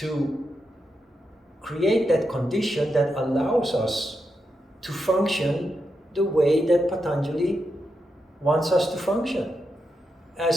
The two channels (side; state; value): both; normal; correlation 0.86